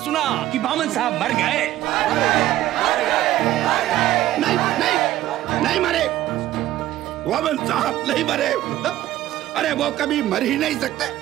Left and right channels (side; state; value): left; quieter; 14.3 dB